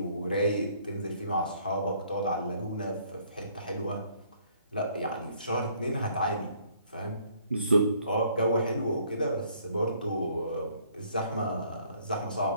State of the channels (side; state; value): both; inverted; correlation -0.63